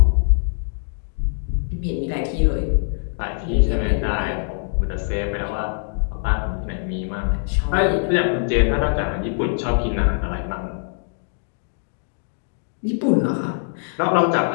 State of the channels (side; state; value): right; silent; digital silence